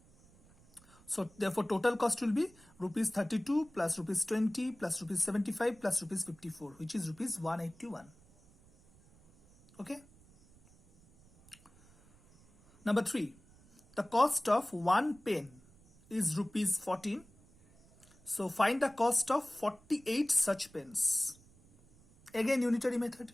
So therefore total cost will be rupees 32 plus rupees 20 plus rupees 75 plus rupees 54, which is rupees 181. Okay. Number 3, the cost of 1 pen is rupees 14. So find the cost of 48 such pens. Again unitary method.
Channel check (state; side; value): noise; right; rumble, 27 dB below the sound